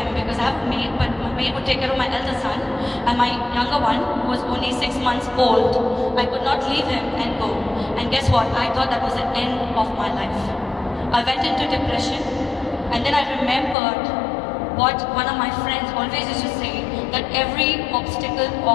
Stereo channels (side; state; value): right; drops out; at 13.8 s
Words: because I have a maid, but my maid would take care of my elder son, and my younger one, who was only 6 months old, I could not leave him and go. And guess what? I thought that was the end of my life. I went into depression, and then I remembered what one of my friends always used to say, that every obstacle